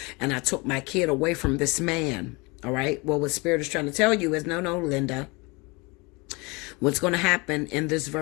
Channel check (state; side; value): quieter; right; 26.9 dB